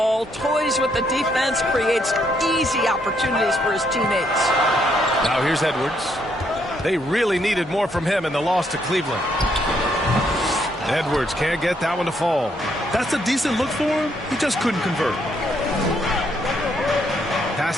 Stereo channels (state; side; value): normal; both; correlation 0.73